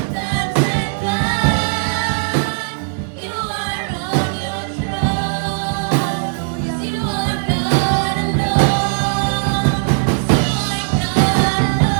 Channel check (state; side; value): silent; left; digital silence